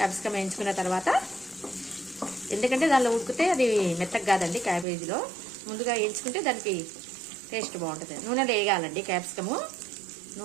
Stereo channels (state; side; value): drops out; left; at 4.9 s